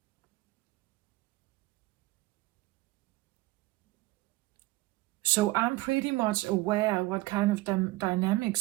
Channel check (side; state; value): left; quieter; 19.5 dB